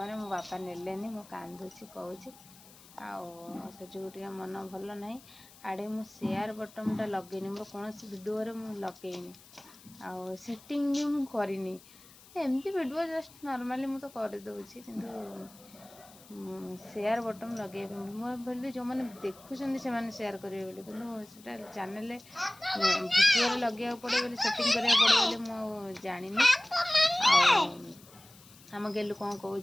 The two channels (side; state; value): left; noise; hiss, 23 dB below the sound